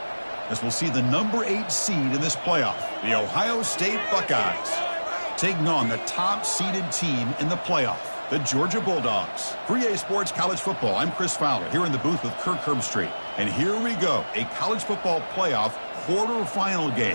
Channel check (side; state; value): both; inverted; correlation -1.00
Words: As we'll see the number 8 seed in this playoff, the Ohio State Buckeyes, taking on the top-seeded team in the playoff, the Georgia Bulldogs. For EA Sports College Football, I'm Chris Fowler here in the booth with Kirk Herbstreit. And here we go, a college football playoff quarterfinal